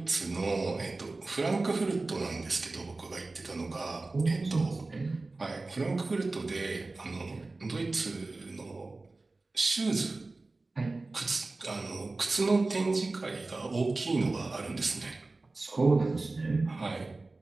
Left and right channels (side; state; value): left; quieter; 3.3 dB